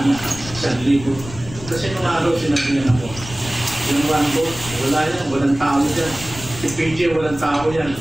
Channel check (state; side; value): noise; left; rumble, 14 dB below the sound